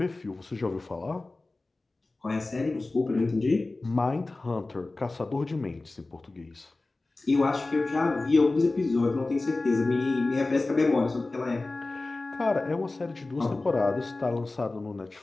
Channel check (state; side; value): quieter; right; 3.2 dB